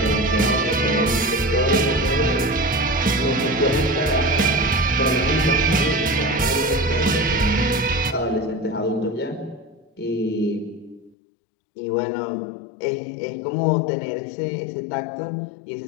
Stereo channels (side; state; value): right; drops out; at 11.2 s